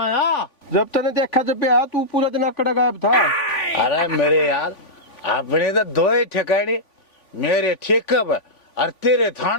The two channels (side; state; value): right; late; 3.5 ms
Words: जब तने देखा जब आया तू पूरा दिन अकड़ गायब था। अरे मेरे यार अपने तो दो ही ठिकाने, मेरे ठेके पे और तेरे